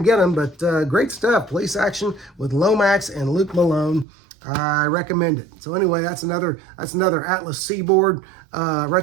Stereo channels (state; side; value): drops out; left; at 4.0 s